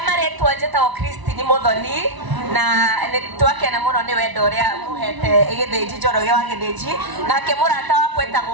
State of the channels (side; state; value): left; late; 1.0 ms